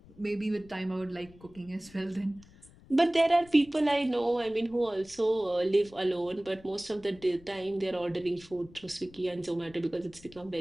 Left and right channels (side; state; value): left; noise; rumble, 23 dB below the sound